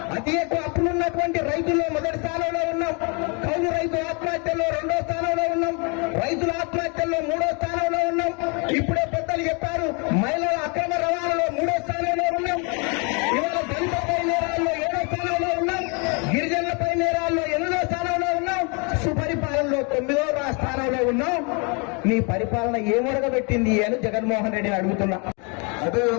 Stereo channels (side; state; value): right; quieter; 33.6 dB